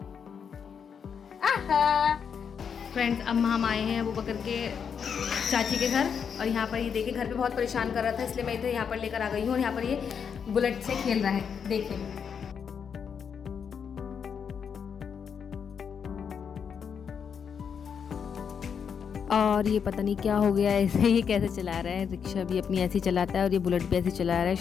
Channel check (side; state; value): right; quieter; 7.0 dB